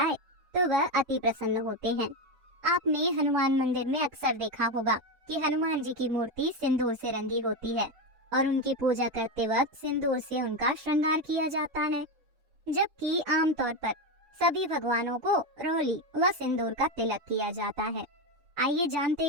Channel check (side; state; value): left; late; 7.1 ms